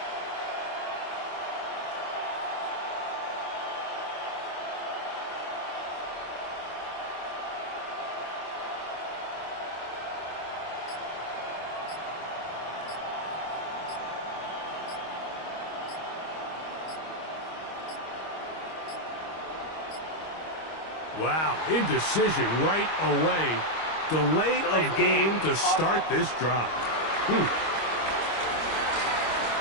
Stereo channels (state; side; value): late; right; 25 ms